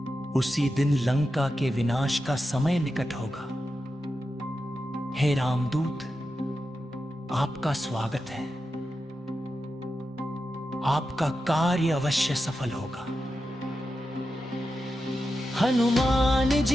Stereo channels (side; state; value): both; normal; correlation 0.90